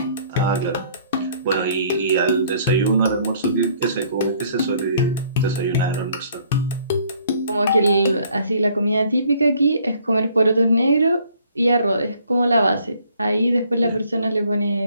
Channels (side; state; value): both; inverted; correlation -0.61